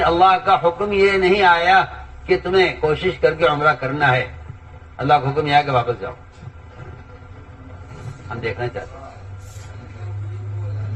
اللہ کا حکم یہ نہیں آیا کہ تمہیں کوشش کر کے عمرہ کرنا ہے، اللہ کا حکم یہ ہے کہ واپس جاؤ۔ ہم دیکھنا چاہتے ہیں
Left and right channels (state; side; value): identical; both; correlation 1.00